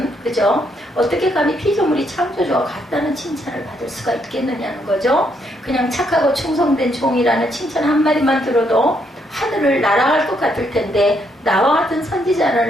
그죠? 어떻게 감히 피조물이 창조주와 같다는 칭찬을 받을 수가 있겠느냐는 거죠. 그냥 착하고 충성된 종이라는 칭찬 한마디만 들어도 하늘을 날아갈 것 같을 텐데, 나와 같은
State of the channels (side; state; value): both; normal; correlation 0.74